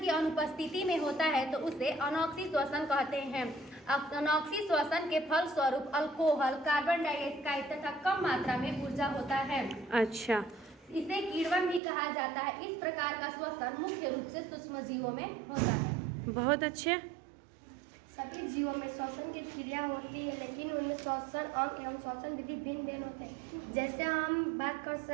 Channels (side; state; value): left; drops out; at 11.8 s